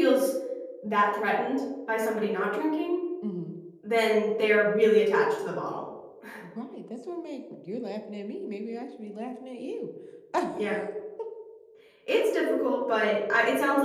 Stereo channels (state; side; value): identical; both; correlation 1.00